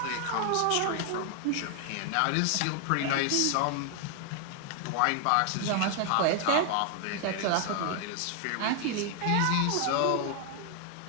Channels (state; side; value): different; both; correlation 0.00